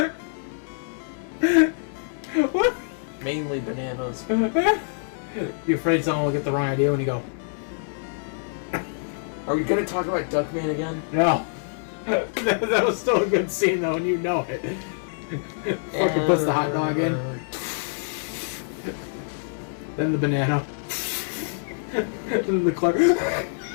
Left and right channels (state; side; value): silent; right; digital silence